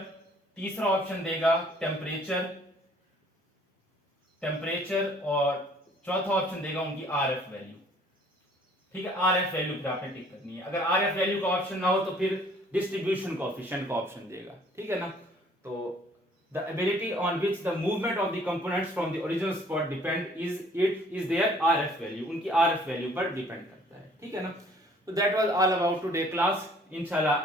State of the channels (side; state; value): both; normal; correlation 0.57